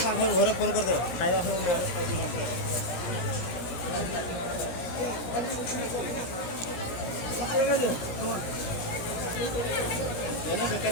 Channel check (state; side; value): late; right; 17 ms